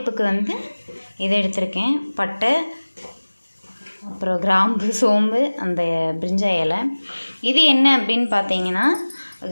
இதை எடுத்திருக்கேன். பட்டை, அப்புறம் கிராம்பு, சோம்பு, அந்த பிரிஞ்சா இலை. இது என்ன அப்படின்னு பார்த்தீங்கன்னா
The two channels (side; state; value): both; inverted; correlation -1.00